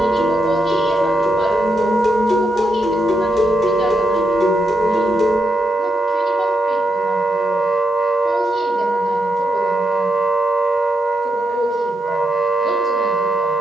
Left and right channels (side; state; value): both; normal; correlation 0.83